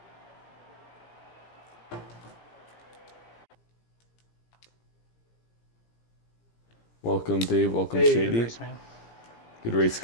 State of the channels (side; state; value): right; late; 17 ms